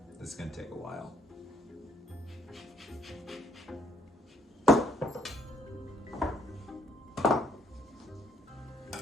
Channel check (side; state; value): both; normal; correlation 0.66